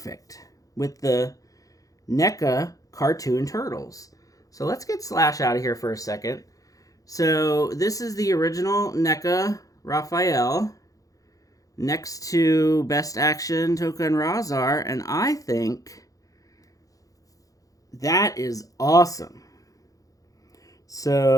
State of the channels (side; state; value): right; late; 0.17 ms